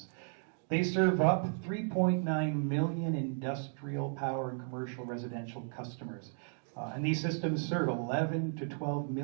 They serve up 3.9 million industrial, power, and commercial residential customers. And these systems serve 11 to 12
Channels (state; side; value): silent; left; 55 dB below the other